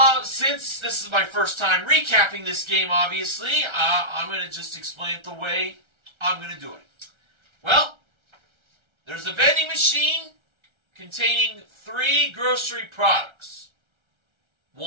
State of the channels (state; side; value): late; left; 1.3 ms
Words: since this is my first time recapping this game, obviously, I'm going to just explain it the way I'm going to do it. Well, there's a vending machine containing 3 grocery products.